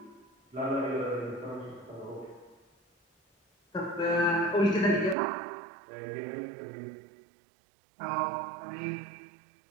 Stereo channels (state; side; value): drops out; left; at 5.2 s